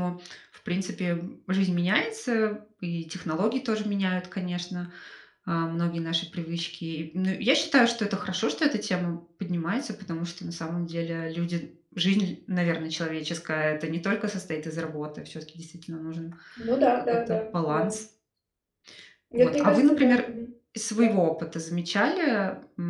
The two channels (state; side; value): identical; both; correlation 1.00